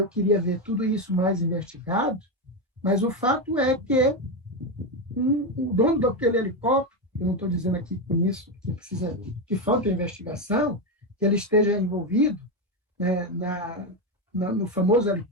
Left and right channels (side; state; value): both; normal; correlation 0.10